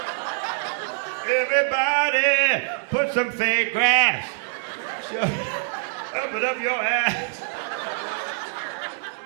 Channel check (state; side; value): silent; left; 62 dB below the other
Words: Everybody, put some fake grass. Up it up your ass.